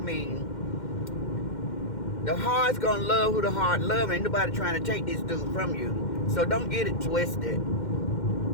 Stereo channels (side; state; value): right; late; 2.1 ms